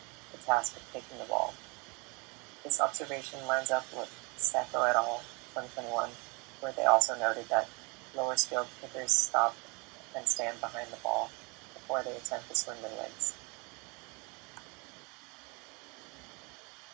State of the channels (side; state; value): left; quieter; 30.2 dB